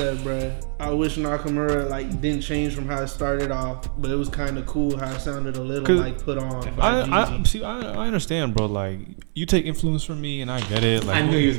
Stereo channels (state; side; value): silent; left; 56 dB below the other